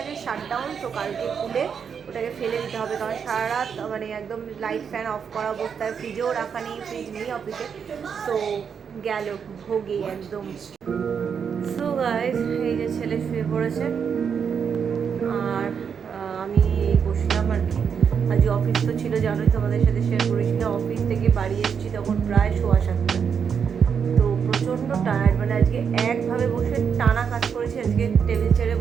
শাটডাউন। তো কালকে খুলে ওটাকে ফেলে দিতে হবে, কারণ সারা রাত মানে একদম লাইট ফ্যান অফ করা অবস্থায়, ফ্রিজেও রাখা নেই, ফ্রিজ নেই অফিসে। তো গেল ভোগে একদম। সো গাইস, এই যে ছেলে শুয়ে পড়েছে আর আমি বসলাম আর কি। আজ অফিস তো ছিল জানোই, তোমাদের সাথে শেয়ার করেছিলাম। অফিস থেকে বাড়ি এসেছি তখন প্রায় 7:15। তো প্রচণ্ড টায়ার্ড, মানে আজকে একভাবে বসে টানা কাজ করেছি। আজকে টেবিল ছেড়ে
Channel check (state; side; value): quieter; left; 6.9 dB